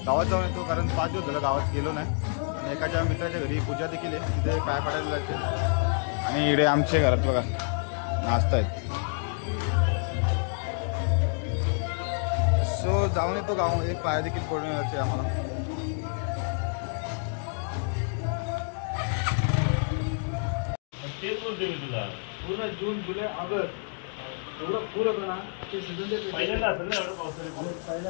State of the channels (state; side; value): silent; right; 59 dB below the other